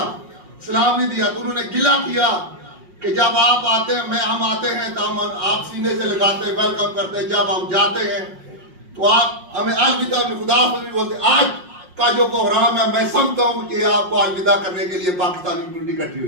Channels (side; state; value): left; late; 5.5 ms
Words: सलाम नहीं दिया, तो उन्होंने गिला किया कि जब आप आते हैं, हम आते हैं तो हम आप सीने से लगाते हैं, वेलकम करते हैं, जब हम जाते हैं तो आप हमें अलविदा खुदा नहीं बोलते. आज का जो प्रोग्राम है, मैं समझता हूँ कि आपको अलविदा करने के लिए पाकिस्तानी कम्युनिटी इकट्ठी